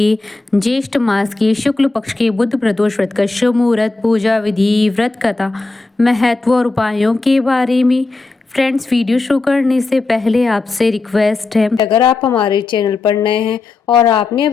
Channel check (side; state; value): right; quieter; 3.5 dB